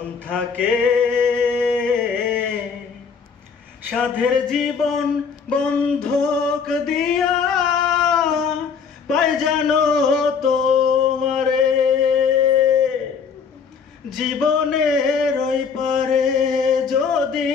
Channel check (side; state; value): right; quieter; 6.1 dB